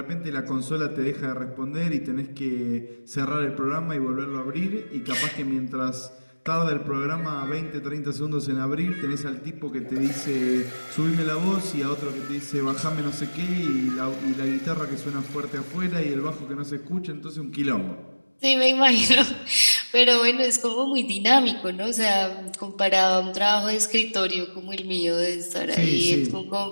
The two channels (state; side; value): inverted; both; correlation -1.00